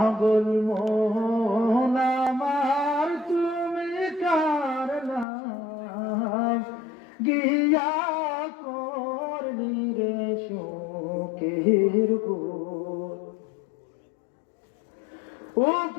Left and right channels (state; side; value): drops out; right; at 5.2 s